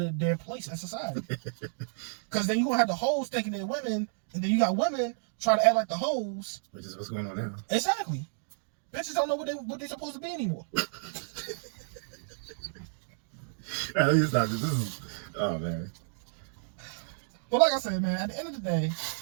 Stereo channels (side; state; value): left; silent; digital silence